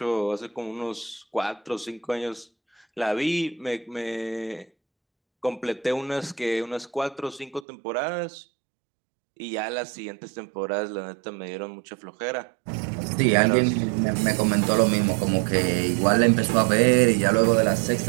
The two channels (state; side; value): drops out; left; at 7.7 s